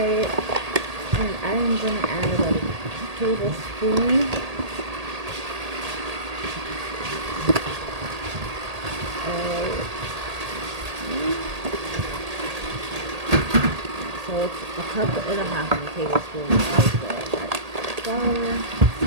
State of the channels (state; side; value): late; left; 1.8 ms